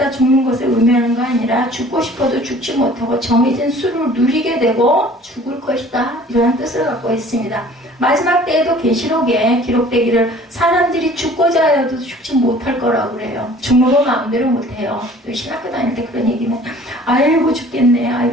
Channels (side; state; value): both; normal; correlation 0.50